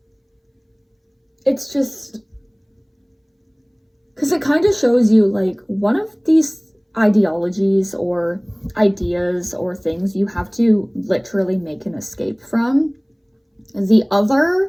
it's just, because it kind of shows you, like, one of these ideologies or ideas or things you have to literally make an escape from. The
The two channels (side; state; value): both; identical; correlation 1.00